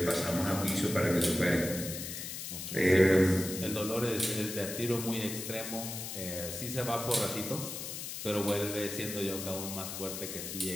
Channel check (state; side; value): noise; left; hiss, 7 dB below the sound